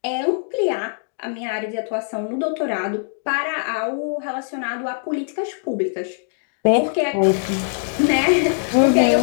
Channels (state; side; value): silent; right; digital silence